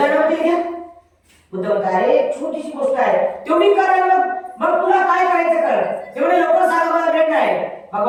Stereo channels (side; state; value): both; identical; correlation 1.00